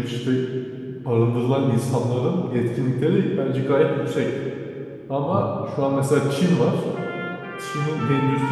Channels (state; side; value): identical; both; correlation 1.00